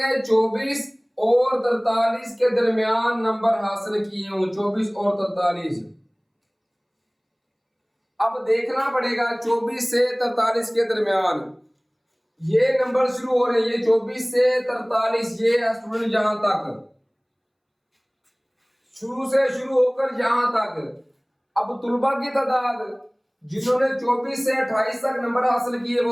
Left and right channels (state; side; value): identical; both; correlation 1.00